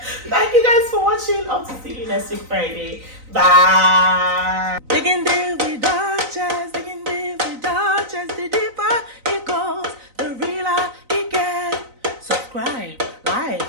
Thank you guys for watching. Hope to see you next week Friday. Bye. Digging Deep with Duchess, Digging Deep with Duchess. The deeper it goes, the realer it gets. Subscribe, like,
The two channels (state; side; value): late; left; 3.9 ms